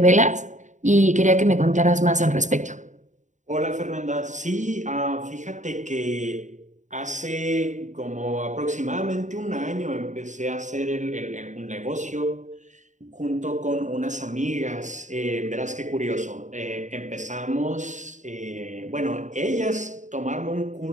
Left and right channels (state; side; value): late; left; 0.35 ms